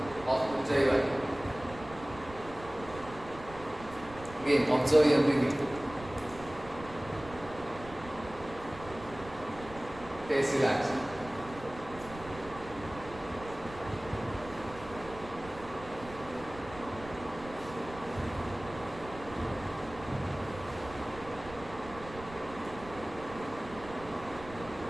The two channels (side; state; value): right; noise; rumble, 16 dB below the sound